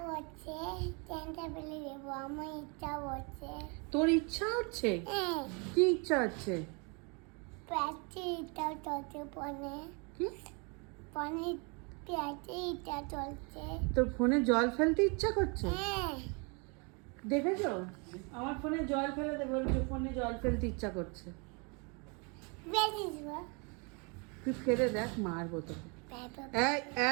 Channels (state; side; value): quieter; left; 32.8 dB